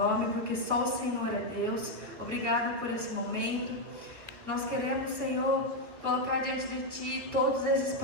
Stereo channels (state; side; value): late; left; 2.4 ms